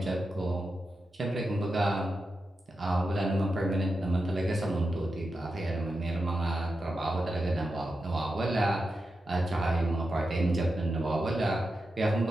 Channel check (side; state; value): both; normal; correlation 0.89